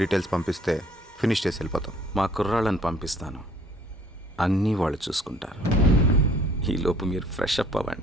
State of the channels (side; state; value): both; normal; correlation 0.57